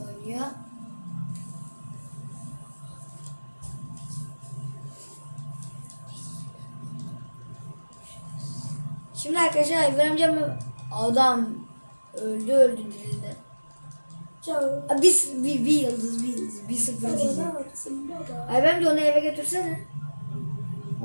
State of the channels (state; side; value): inverted; both; correlation -1.00